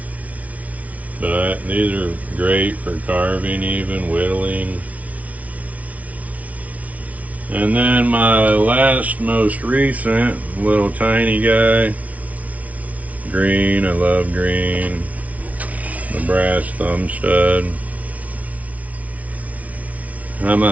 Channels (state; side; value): late; left; 0.069 ms